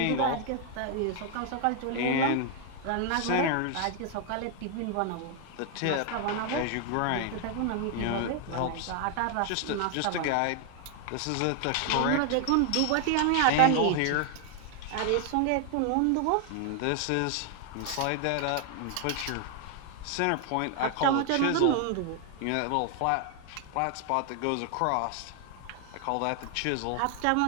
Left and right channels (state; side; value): different; both; correlation 0.00